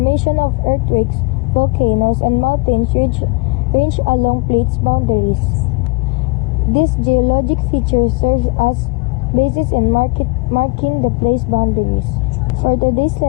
of earthquakes, volcanoes, and mountains range along plates boundaries. This geologic feature serves as basis in marking the place boundaries. For today's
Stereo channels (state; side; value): quieter; right; 27.0 dB